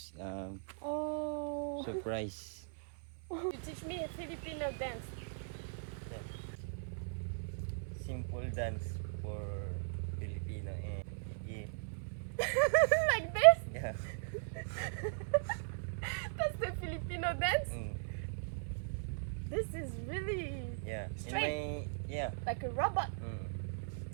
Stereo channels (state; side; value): silent; left; 52 dB below the other